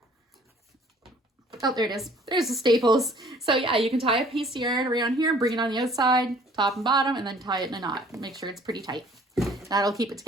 Oh, there it is. There's the staples. So yeah, you can tie a piece of yarn around here, bring it on the outside, top and bottom, and then tie it in a knot. Make sure it's pretty tight. That'll keep it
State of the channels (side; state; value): both; normal; correlation 0.55